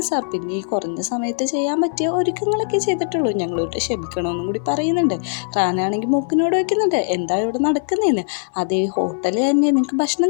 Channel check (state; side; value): silent; right; 63 dB below the other